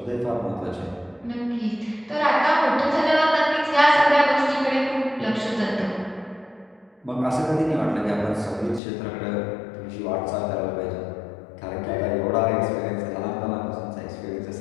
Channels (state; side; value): drops out; right; at 8.8 s